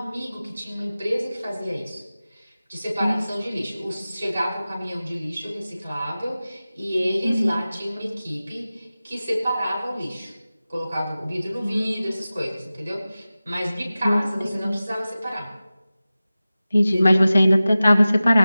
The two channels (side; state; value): both; inverted; correlation -0.96